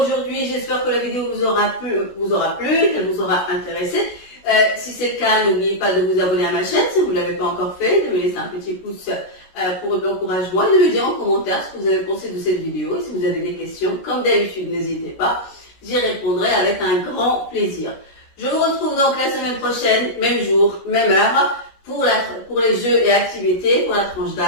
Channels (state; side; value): late; right; 16 ms